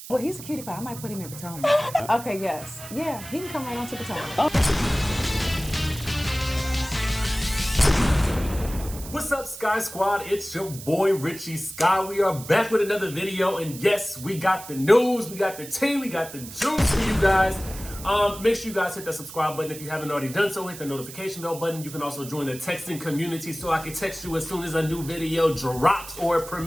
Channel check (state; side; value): noise; right; hiss, 13 dB below the sound